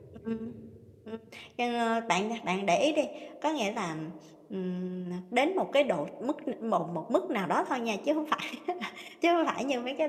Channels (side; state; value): both; identical; correlation 1.00